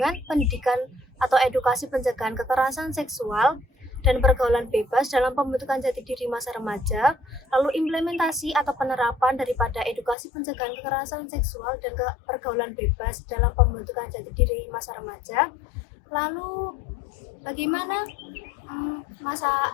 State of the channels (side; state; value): right; drops out; at 10.2 s